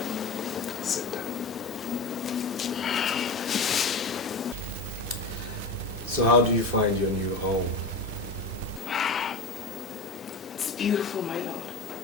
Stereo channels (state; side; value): quieter; right; 3.4 dB